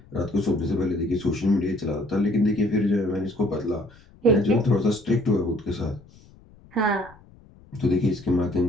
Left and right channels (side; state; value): left; noise; rumble, 25 dB below the sound